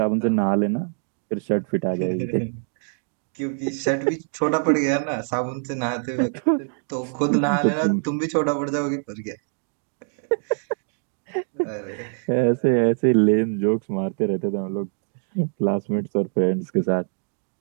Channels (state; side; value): silent; left; 58 dB below the other